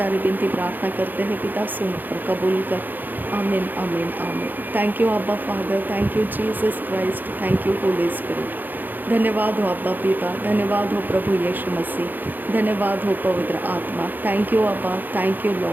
विनती प्रार्थना करते हैं पिता, सुन और कबूल कर। आमीन आमीन आमीन। थैंक यू अब्बा father, thank you Jesus Christ, thank you Holi spirit. धन्यवाद हो अब्बा पिता, धन्यवाद हो प्रभु यीशु मसीह, धन्यवाद हो पवित्र आत्मा। थैंक यू अब्बा, thank you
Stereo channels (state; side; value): late; left; 0.087 ms